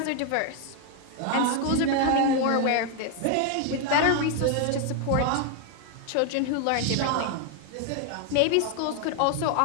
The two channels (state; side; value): different; both; correlation 0.00